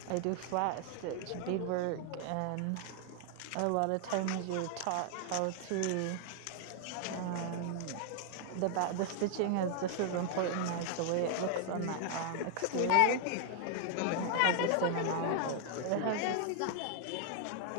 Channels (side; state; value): both; different; correlation 0.00